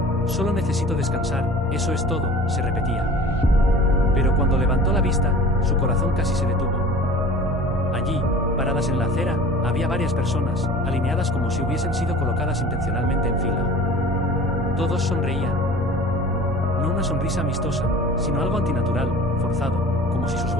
Solo necesito descansar, eso es todo, se repetía. Pero cuando levantó la vista, su corazón casi se detuvo. Allí, paradas en la acera, había varias personas, alineadas como si hubiesen sido colocadas intencionalmente en fila. Todos sonreían. No una sonrisa amistosa, sino algo antinatural, forzado, como si sus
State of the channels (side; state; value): both; normal; correlation 0.42